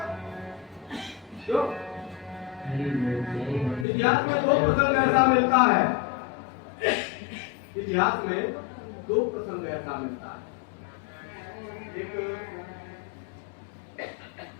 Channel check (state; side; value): drops out; right; at 3.9 s